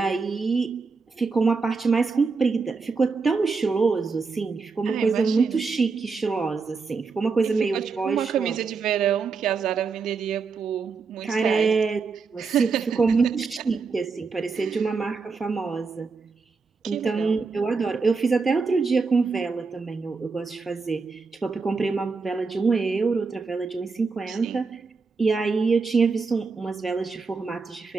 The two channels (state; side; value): quieter; left; 4.7 dB